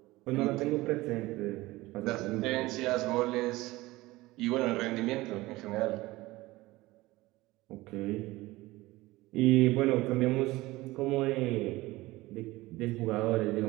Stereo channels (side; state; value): left; quieter; 19.3 dB